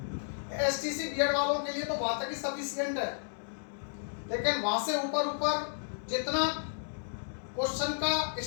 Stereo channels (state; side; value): silent; right; digital silence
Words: एसटीसी बीएड वालों के लिए तो वहां तक ही सफिशिएंट है, लेकिन वहां से ऊपर जितना क्वेश्चन का